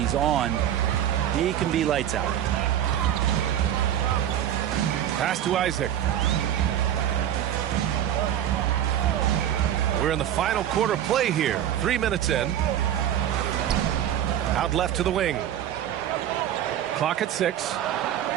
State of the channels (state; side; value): quieter; left; 10.9 dB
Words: on, he can be lights out. Pass to Isaac. We're in the final quarter play here. 3 minutes in. Out left to the wing. Clock at 6.